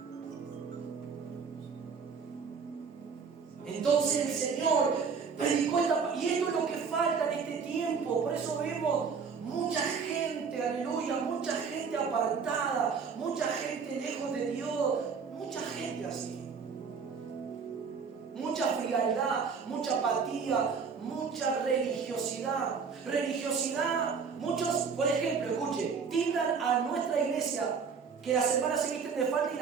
Entonces el Señor predicó esta... Y esto es lo que falta en este tiempo. Por eso vemos mucha gente, aleluya, mucha gente apartada, mucha gente lejos de Dios, mucha gente así. Mucha frialdad, mucha apatía, mucha religiosidad. Religiosidad, muchos, por ejemplo, escuche, tildan a nuestra iglesia que las hermanas se visten de falda y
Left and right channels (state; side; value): quieter; left; 5.8 dB